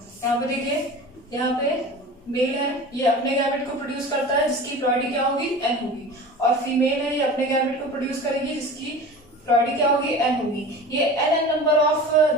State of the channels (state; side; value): normal; both; correlation 0.36